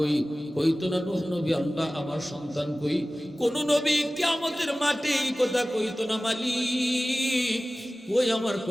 কইতো না নূহ নবী আল্লাহ আমার সন্তান কই। কোন নবী কিয়ামতের মাঠে এই কথা কইতো না মালিক ওই আমার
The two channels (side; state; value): both; normal; correlation 0.97